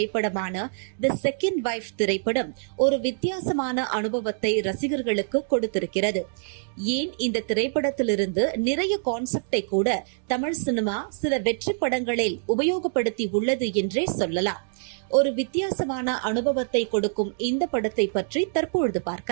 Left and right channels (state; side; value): silent; left; digital silence